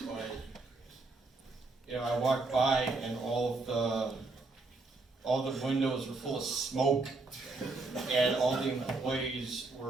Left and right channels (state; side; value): quieter; left; 3.5 dB